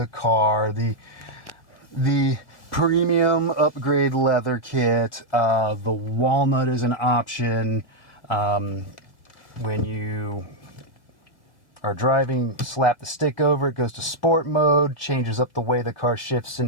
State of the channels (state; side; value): late; right; 1.8 ms